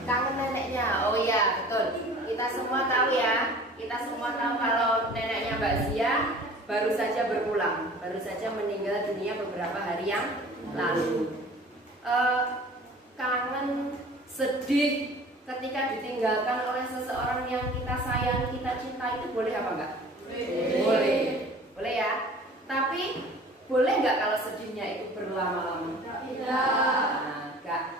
Kangen neneknya. Oh iya, betul. Kita semua tahu ya. Kita semua tahu kalau neneknya Mbak Zia baru saja berpulang, baru saja meninggal dunia beberapa hari yang lalu. Kangen, sedih ketika ditinggalkan oleh seseorang yang kita sayang, kita cinta, itu boleh apa enggak? Boleh. Boleh ya. Tapi boleh nggak kalau sedihnya itu berlama-lama?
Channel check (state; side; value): normal; both; correlation 0.45